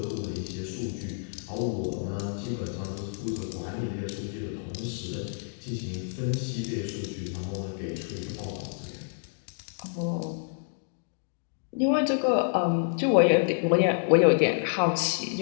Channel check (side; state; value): right; silent; digital silence